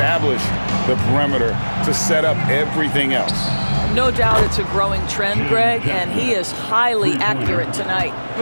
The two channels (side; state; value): both; inverted; correlation -1.00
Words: the perimeter to set up everything else. No doubt it's a growing trend, Greg, and he is highly accurate tonight.